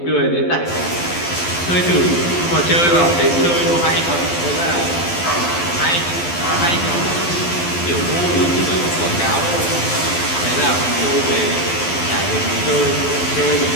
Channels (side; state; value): right; late; 12 ms